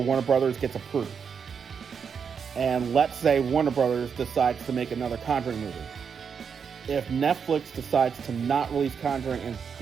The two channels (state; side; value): quieter; left; 6.6 dB